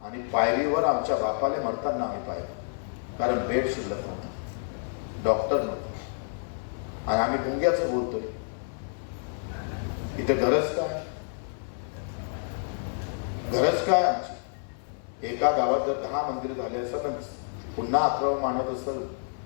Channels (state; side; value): silent; right; 59 dB below the other